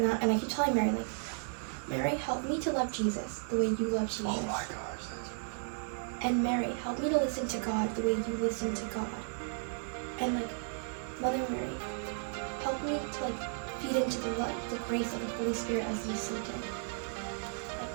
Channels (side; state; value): left; silent; 55 dB below the other